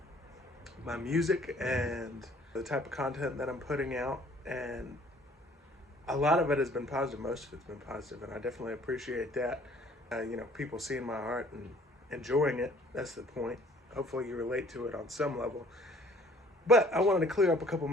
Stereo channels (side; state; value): both; normal; correlation 0.56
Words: my music and the type of content that I'm putting out, and a lot of it has been positive. Most of it's been positive, and I definitely appreciate that. People seeing my art and enjoying it, that's the point. Hopefully you relate to it on some level. But I wanted to clear up a couple